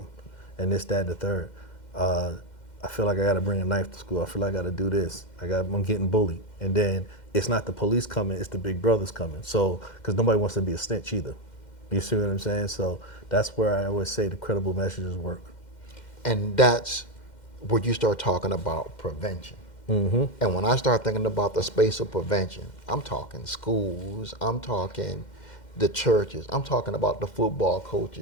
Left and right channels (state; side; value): late; right; 2.1 ms